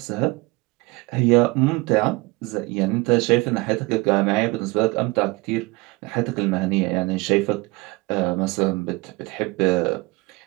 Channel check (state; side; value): quieter; left; 23.7 dB